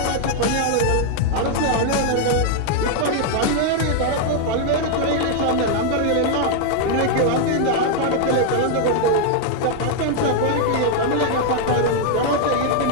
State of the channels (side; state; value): both; different; correlation 0.00